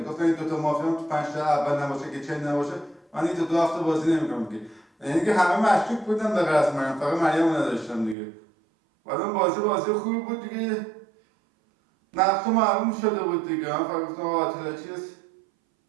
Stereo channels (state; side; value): drops out; left; at 8.2 s